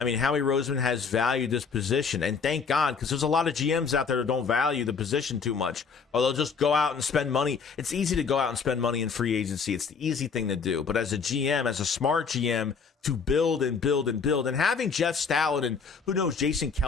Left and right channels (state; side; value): quieter; right; 5.5 dB